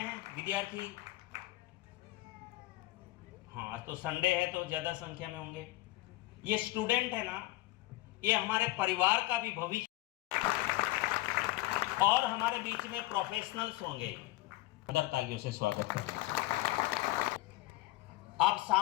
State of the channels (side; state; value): right; quieter; 18.6 dB